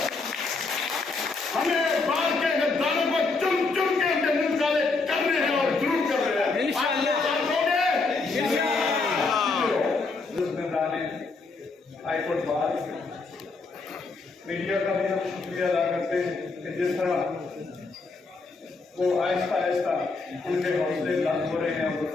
हमें बाल के गद्दारों को चुन चुन के उनके मुंह काले करने हैं और जरूर कर रहे हैं। हाईकोर्ट बार मीडिया का भी हम शुक्रिया अदा करते हैं कि जिस तरह वो आहिस्ता आहिस्ता उनके हौसले बुलंद हो रहे हैं, वो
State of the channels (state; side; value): quieter; right; 3.9 dB